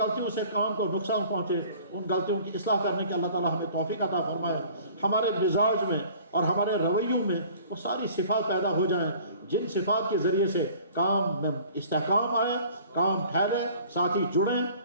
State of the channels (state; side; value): inverted; both; correlation -0.49